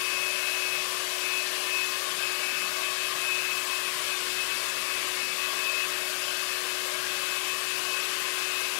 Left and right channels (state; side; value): silent; right; 58 dB below the other